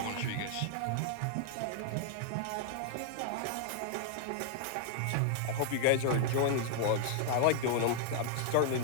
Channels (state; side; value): different; both; correlation -0.01